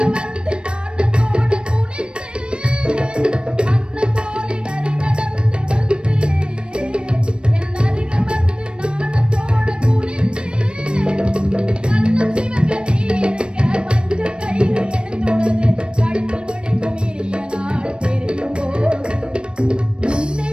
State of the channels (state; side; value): late; left; 0.055 ms